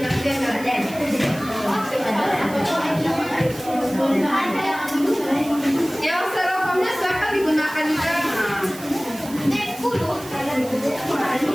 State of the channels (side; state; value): right; noise; hiss, 16 dB below the sound